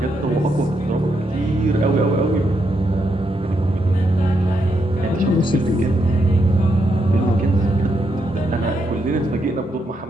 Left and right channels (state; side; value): normal; both; correlation 0.80